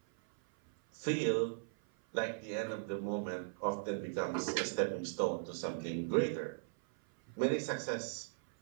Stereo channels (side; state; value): left; silent; 52 dB below the other